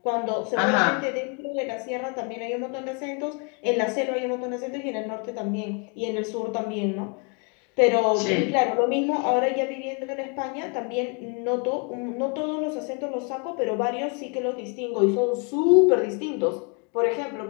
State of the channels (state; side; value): quieter; right; 35.1 dB